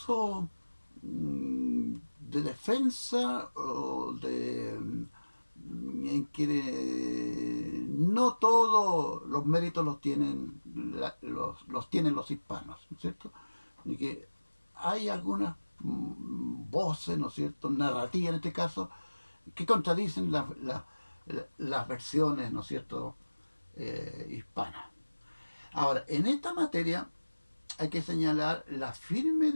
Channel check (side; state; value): both; inverted; correlation -1.00